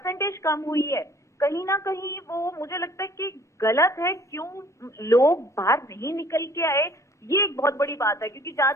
कम हुई है कहीं ना कहीं वो मुझे लगता है कि गलत है। क्यों लोग बाहर नहीं निकल के आए, ये एक बहुत बड़ी बात है। क्योंकि जहां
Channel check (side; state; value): both; normal; correlation 0.55